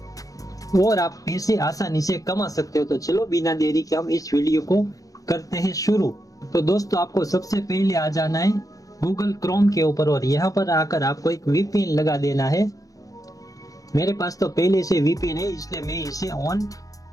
और आप पैसे आसानी से कमा सकते हो। तो चलो बिना देरी के हम इस वीडियो को करते हैं शुरू। तो दोस्तों, आपको सबसे पहले आ जाना है गूगल क्रोम के ऊपर और यहाँ पर आकर आपको एक वीपीएन लगा देना है। मेरे पास तो पहले से वीपीएन है इसलिए मैं इसे ऑन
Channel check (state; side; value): late; right; 0.17 ms